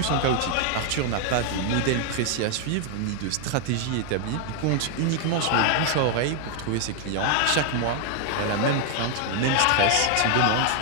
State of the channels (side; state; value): both; different; correlation 0.00